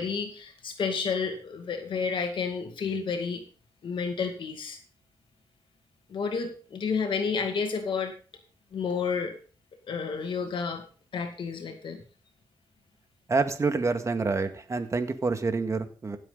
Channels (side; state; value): both; normal; correlation 0.62